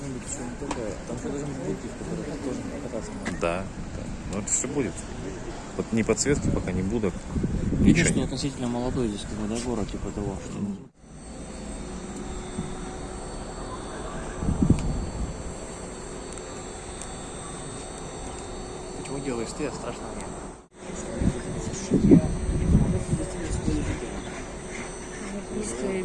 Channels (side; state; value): both; identical; correlation 1.00